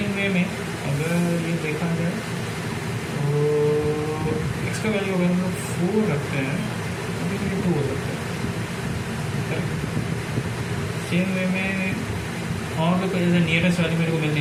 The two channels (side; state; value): both; identical; correlation 1.00